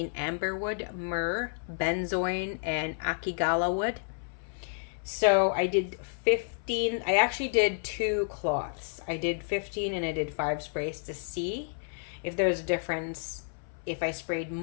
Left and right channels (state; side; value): silent; right; 57 dB below the other